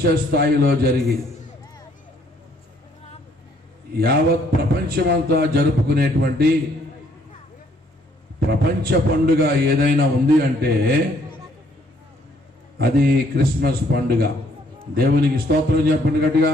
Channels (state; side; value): normal; both; correlation 0.65